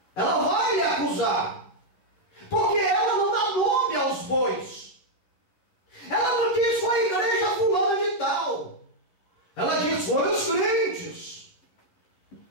Ela vai lhe acusar, porque ela não dá nome aos bois. Ela não diz foi a igreja fulana de tal. Ela diz foi os crentes.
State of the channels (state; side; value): late; right; 11 ms